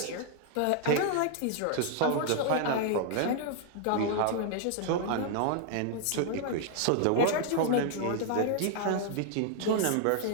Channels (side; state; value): both; different; correlation 0.00